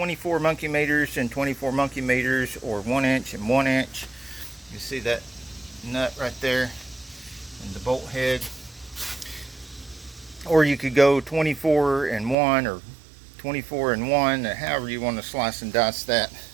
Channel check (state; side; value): drops out; left; at 12.4 s